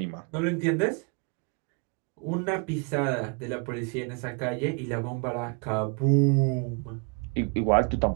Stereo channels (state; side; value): quieter; left; 34.7 dB